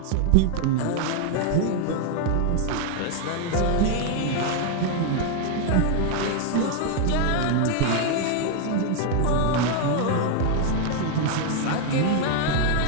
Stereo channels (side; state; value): both; different; correlation 0.00